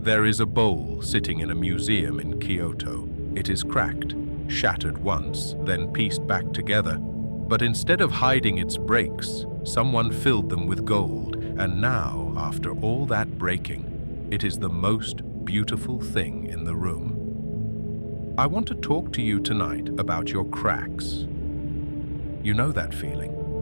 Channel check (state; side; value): inverted; both; correlation -1.00